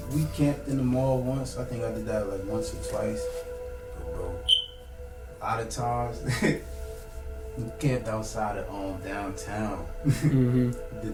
camped in the mall once. I think I did that like once or twice. But bro, a lot of times. We camped outside of downtown. Mm-hmm.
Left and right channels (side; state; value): both; identical; correlation 1.00